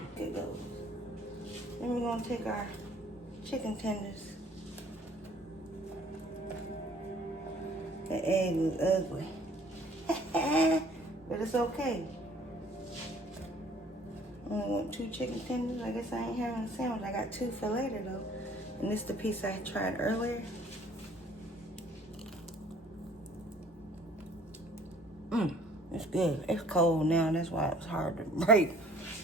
Here it goes. Then we're gonna take our chicken tenders. The egg was ugly. But it's okay. I only want 2 chicken tenders. I guess I ain't having a sandwich. I got 2 for later though. And this is the piece I tried earlier. It's good. It's cold now. That's why it was hard to break.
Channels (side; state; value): both; normal; correlation 0.55